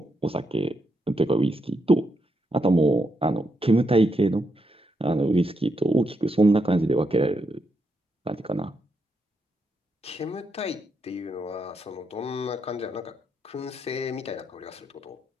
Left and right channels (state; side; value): normal; both; correlation 0.81